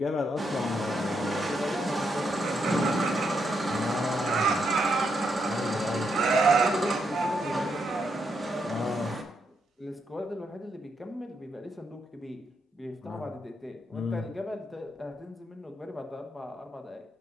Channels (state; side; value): normal; both; correlation 0.80